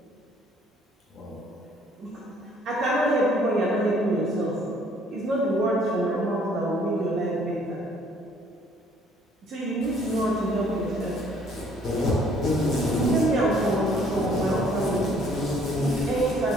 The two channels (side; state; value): both; normal; correlation 0.60